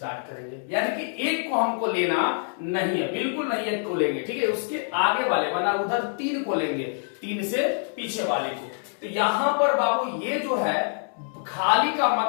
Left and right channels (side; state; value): right; silent; 61 dB below the other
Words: करेंगे, यानी कि एक को हमको लेना नहीं है, बिल्कुल नहीं एक को लेंगे, ठीक है। उसके आगे वाले वरना उधर 3 को लेंगे, 3 से पीछे वाले को। तो यहां पर बाबू ये जो है खाली का